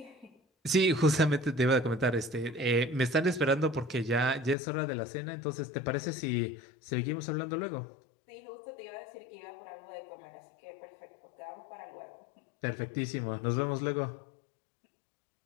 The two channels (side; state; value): right; drops out; at 4.5 s